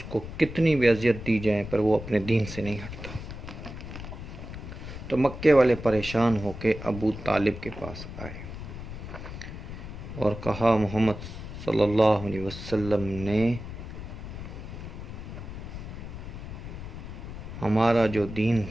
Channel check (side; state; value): left; noise; rumble, 10 dB below the sound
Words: کو کتنی بھی اذیت دی جائے پر وہ اپنے دین سے نہیں ہٹتا۔ تو مکے والے پریشان ہو کے ابو طالب کے پاس آئے اور کہا محمد صلی اللہ علیہ وسلم نے ہمارا جو دین